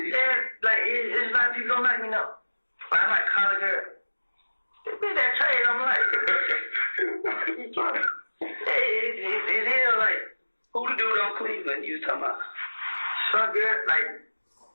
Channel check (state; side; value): inverted; both; correlation -1.00